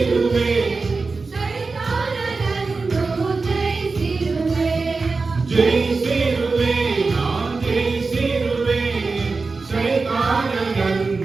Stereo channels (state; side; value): quieter; left; 4.1 dB